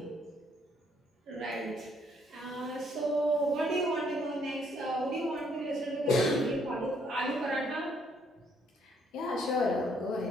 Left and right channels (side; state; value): both; normal; correlation 0.68